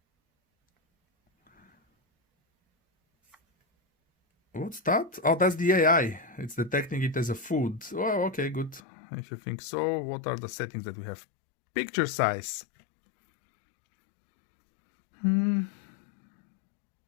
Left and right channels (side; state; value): right; drops out; at 8.8 s